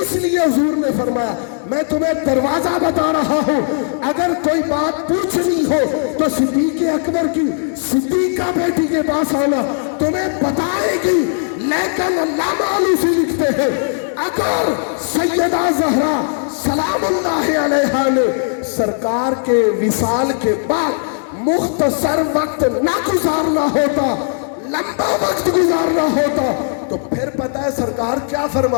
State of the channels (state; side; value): silent; right; digital silence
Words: لیے حضور نے فرمایا میں تمہیں دروازہ بتا رہا ہوں، اگر کوئی بات پوچھنی ہو تو صدیق اکبر کی صدیقہ بیٹی کے پاس آنا، تمہیں بتائے گی۔ لیکن علامہ آلوسی لکھتے ہیں اگر سیدہ زہرا سلام اللہ علیہا نے سرکار کے وصال کے بعد مختصر وقت نہ گزارنا ہوتا، لمبا وقت گزارنا ہوتا، تو پھر پتہ ہے سرکار کیا